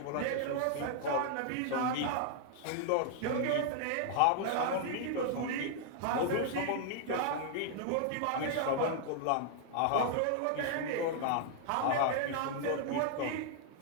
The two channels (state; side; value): different; both; correlation 0.00